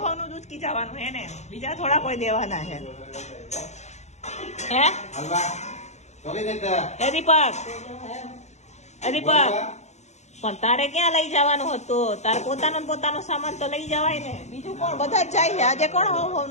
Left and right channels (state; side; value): late; right; 0.33 ms